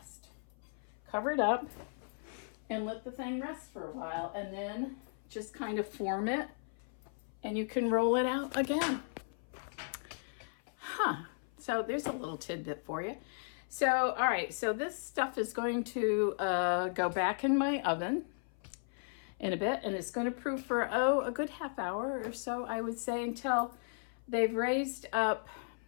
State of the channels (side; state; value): right; silent; 54 dB below the other